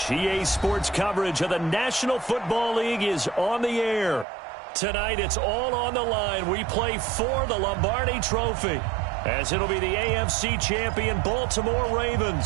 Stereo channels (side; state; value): left; drops out; at 4.2 s